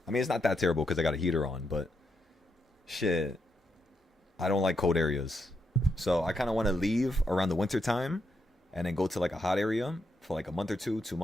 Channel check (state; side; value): normal; both; correlation 0.81